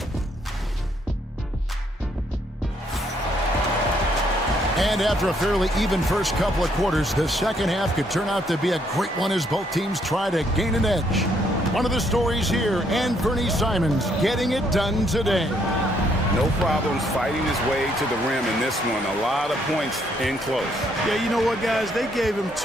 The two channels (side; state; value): both; normal; correlation 0.70